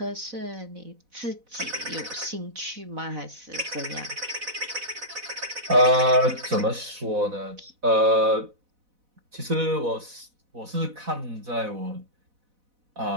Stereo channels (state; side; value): late; left; 4.0 ms